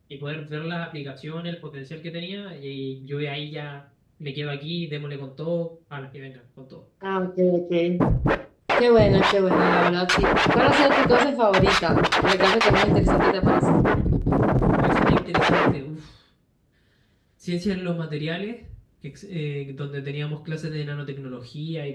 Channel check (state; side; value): identical; both; correlation 1.00